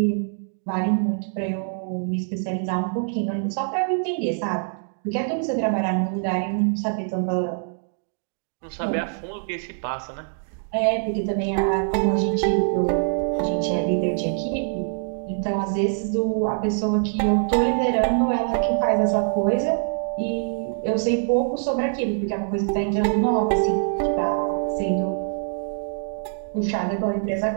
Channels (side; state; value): left; silent; digital silence